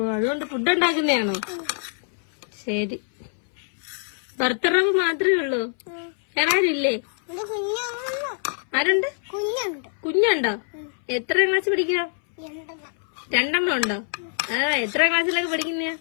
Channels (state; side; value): silent; right; 61 dB below the other